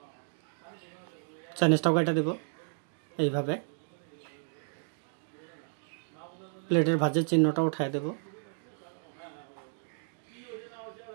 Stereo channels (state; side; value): silent; left; 56 dB below the other